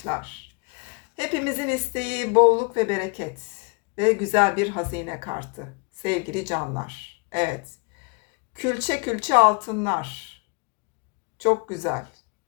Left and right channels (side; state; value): right; quieter; 32.1 dB